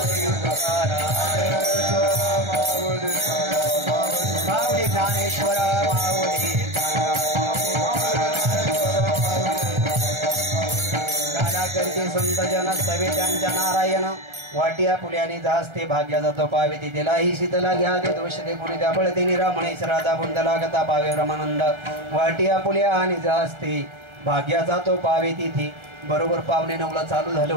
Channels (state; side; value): late; left; 1.3 ms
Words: माऊली ज्ञानेश्वर माऊली करते संत जन सवे त्यांच्या नारायण. वाटिया फुल्याने जास्ते भाग्या जातो पावे तिला ही शीतला घ्या दे दोष दे कोणी त्या बळते निरामणेश राधा बुंदला गता पावे रमानंद. वाटिया फुल्या आणि जास्ते भाग्या जातो पावे तिथे. बरोबर 9:45 चालू झालं